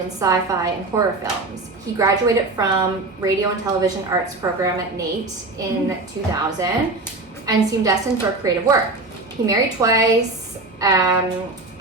in sci-fi and horror films. He graduated from radio and television arts program at NAIT in 2000 and seemed destined for creative work. He married twice.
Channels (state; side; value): quieter; left; 3.1 dB